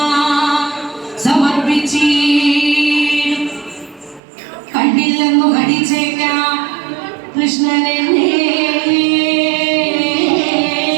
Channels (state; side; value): drops out; left; at 4.2 s